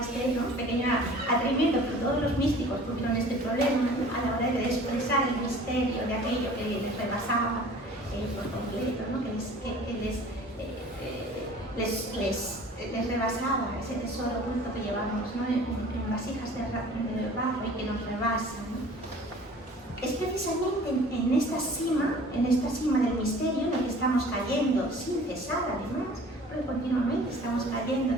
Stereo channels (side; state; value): both; normal; correlation 0.47